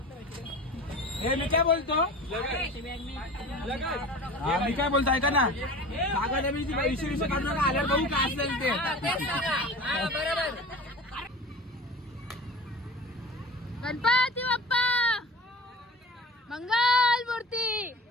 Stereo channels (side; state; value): both; normal; correlation 0.37